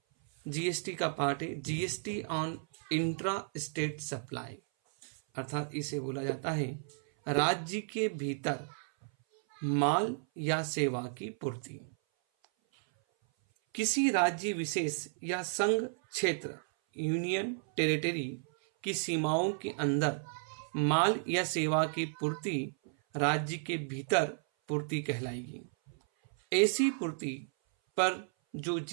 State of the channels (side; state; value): left; silent; 56 dB below the other